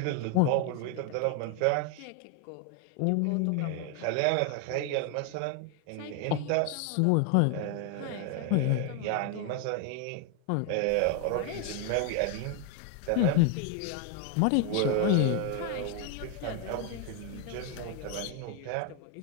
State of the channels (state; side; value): different; both; correlation 0.01